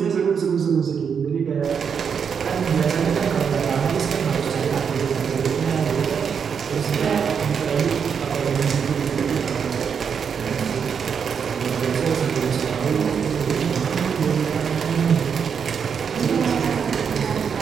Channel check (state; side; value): quieter; left; 6.8 dB